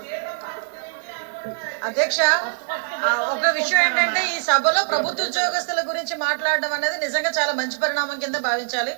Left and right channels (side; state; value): left; silent; digital silence